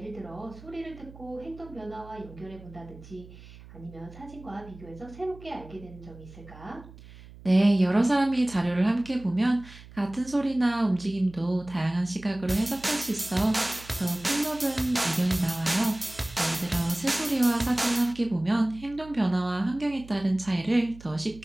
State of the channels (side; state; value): right; noise; hum, 19 dB below the sound